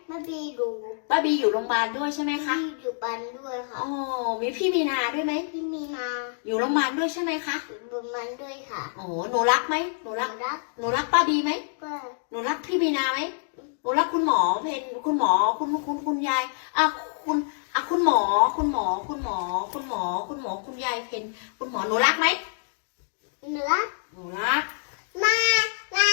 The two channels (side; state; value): right; silent; digital silence